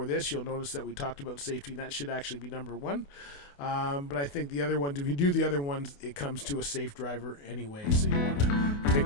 this, you'll notice that we talked about safety, and that should actually be number one. But I think the other ones, if you do the other ones, it comes to a safe driver anyway, so you want to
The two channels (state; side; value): late; right; 28 ms